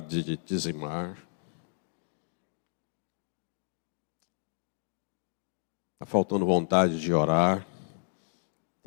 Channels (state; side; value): silent; right; digital silence